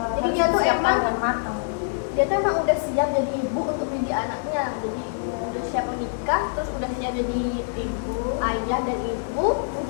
Jadi dia tuh Siapkan emang dengan matang. dia tuh emang udah siap jadi ibu untuk mendidik anaknya, jadi udah siap menikah, terus udah siap jadi ibu, ayah dan ibu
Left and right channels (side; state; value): right; silent; digital silence